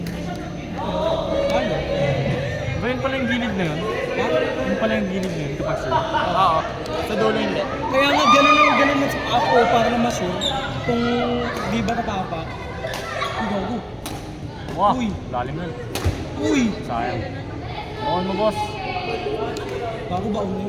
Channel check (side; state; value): both; identical; correlation 1.00